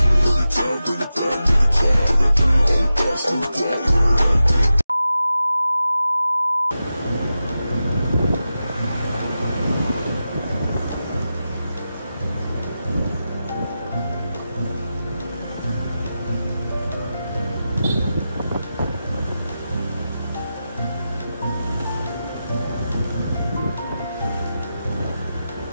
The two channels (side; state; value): both; inverted; correlation -0.91